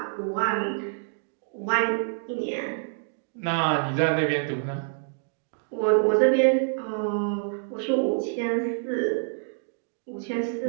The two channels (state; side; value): silent; left; digital silence